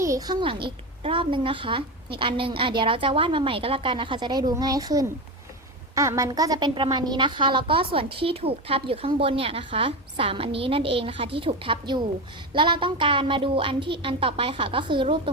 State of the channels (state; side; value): normal; both; correlation 0.19